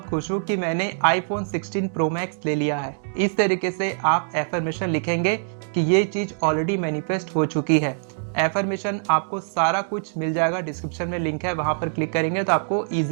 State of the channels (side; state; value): left; silent; digital silence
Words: खुश हूँ कि मैंने iPhone 16 Pro Max ले लिया है। इस तरीके से आप एफर्मेशन लिखेंगे कि ये चीज ऑलरेडी मैनिफेस्ट हो चुकी है। एफर्मेशन आपको सारा कुछ मिल जाएगा, डिस्क्रिप्शन में लिंक है, वहां पर क्लिक करेंगे तो आपको